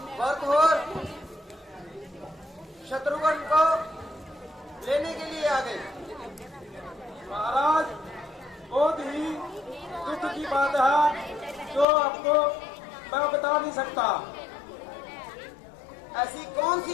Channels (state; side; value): drops out; right; at 11.9 s